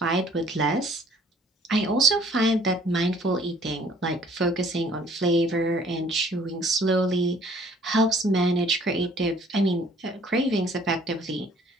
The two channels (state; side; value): normal; both; correlation 0.56